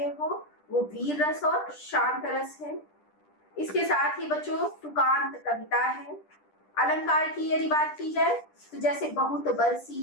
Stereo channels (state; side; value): late; right; 10 ms